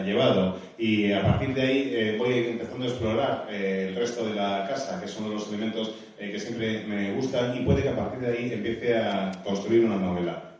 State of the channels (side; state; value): both; identical; correlation 1.00